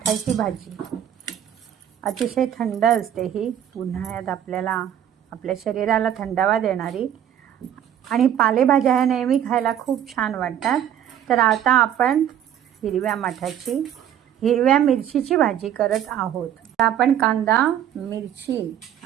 भाजी। अतिशय थंड असते ही, उन्हाळ्यात आपल्याला आपल्या शरीराला थंडावा देणारी आणि पालेभाज्या ह्या नेहमी खायला खूप छान वाटतात। तर आता आपण हिरव्या माठाची हिरव्या मिरचीची भाजी करत आहोत। तर आपण कांदा, मिरची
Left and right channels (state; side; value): quieter; left; 10.3 dB